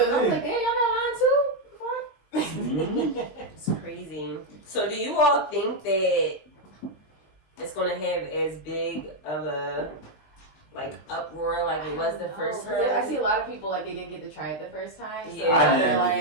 I was like, damn, y'all got line too? Fuck. It's crazy. So, do you all think that it's going to have as big of a uproar like it was the first time? I see a lot of people like they didn't get to try it the first time. So Yeah. I they're didn't like,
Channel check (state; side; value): late; right; 20 ms